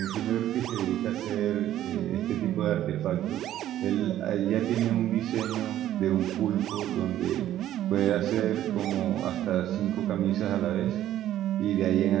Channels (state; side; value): quieter; left; 12.4 dB